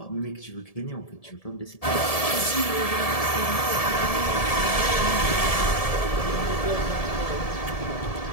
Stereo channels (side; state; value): right; late; 1.7 ms